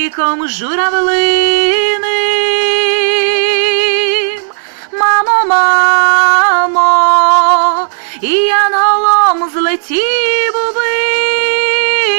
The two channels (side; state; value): left; silent; digital silence